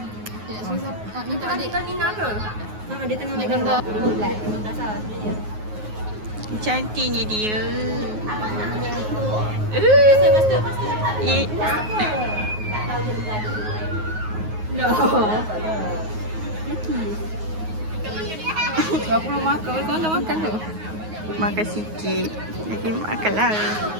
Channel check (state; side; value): late; left; 9.4 ms